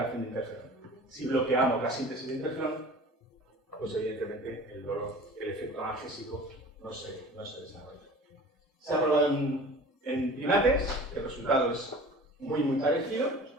de interferón. Si bloqueamos la síntesis de interferón, pues evidentemente el efecto analgésico no se desarrolla. Se ha probado en primates, el resultado es muy parecido,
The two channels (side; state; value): both; normal; correlation 0.42